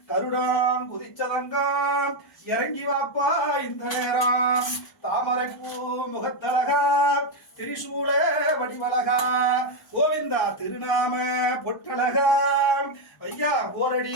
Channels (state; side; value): late; right; 1.0 ms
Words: கருடான் குதிச்சதங்கம் இறங்கி வாப்பா இந்த நேரம் தாமரைப்பூ முகத்தழகா திரிசூல வடிவழகா கோவிந்தா திருநாம பொட்டழகா ஐயா